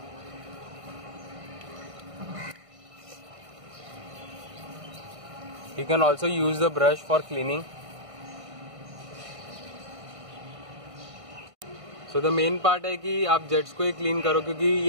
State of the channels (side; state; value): left; late; 1.5 ms